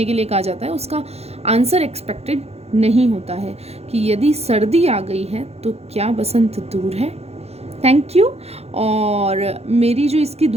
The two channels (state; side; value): late; left; 0.30 ms